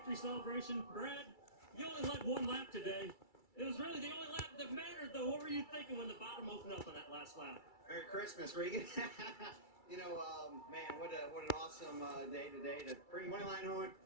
celebration. Brad, you only led one lap today. It was really the only lap that mattered, though. What were you thinking when the bottom opened up on that last lap? Merry Christmas, Regan. Man, what an awesome day today to bring Moneyline home,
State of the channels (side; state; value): right; late; 2.3 ms